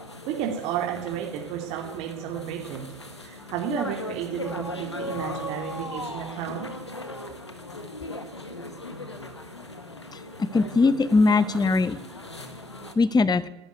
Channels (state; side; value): normal; both; correlation 0.67